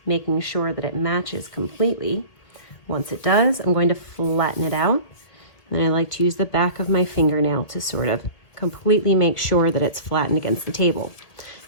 making sure that it matches completely. Once it does, I'm going to flatten it out. And then I like to use the back of my fingernail to sort of completely make sure that it's flattened against the table.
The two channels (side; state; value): right; late; 1.8 ms